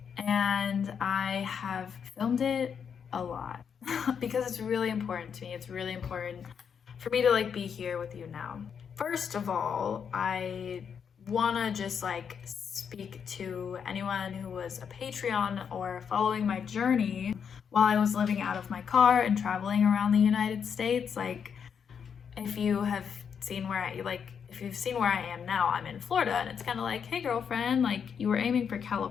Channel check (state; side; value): quieter; right; 7.1 dB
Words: and I have filmed it a lot because it's really important to me. It's really important for me to be here with you now. First of all, I wanna just speak to anyone who was a Patreon or following my journey while I was living out of my car and traveling around the United States. If you have seen where if you've seen where I am now, I'm in Florida, and it's kind of like, hey girlfriend, you were aiming for